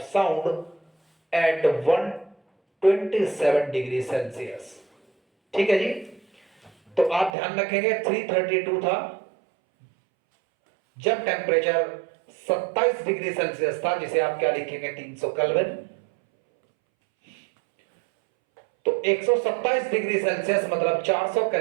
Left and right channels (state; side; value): drops out; left; at 7.3 s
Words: sound at 127 degree Celsius. ठीक है जी, तो आप ध्यान रखेंगे 332 था जब टेम्परेचर 27 डिग्री सेल्सियस था, जिसे आप क्या लिखेंगे 300 केल्विन। तो 127 डिग्री सेल्सियस मतलब 400